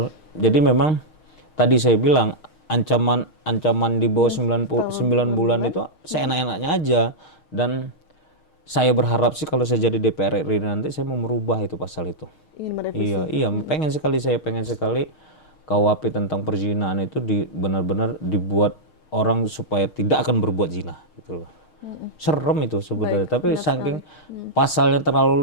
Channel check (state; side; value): late; right; 6.4 ms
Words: Jadi memang tadi saya bilang ancaman di bawah 9 bulan itu seenak-enaknya aja. Dan saya berharap sih kalau saya jadi DPR RI nanti saya mau merubah itu pasal itu. Iya, pengen sekali KUHP tentang perzinahan itu benar-benar dibuat orang supaya tidak akan berbuat zina gitu loh. Serem itu sebenarnya, tapi saking pasalnya